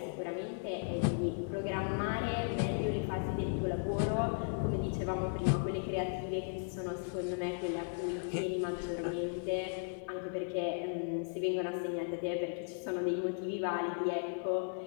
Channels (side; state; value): right; silent; 54 dB below the other